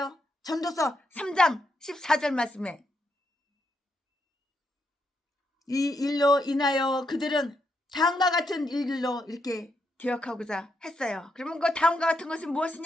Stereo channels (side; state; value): both; normal; correlation 0.80